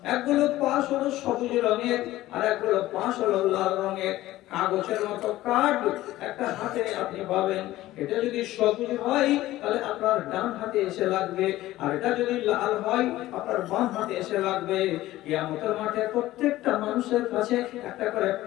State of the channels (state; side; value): quieter; right; 15.9 dB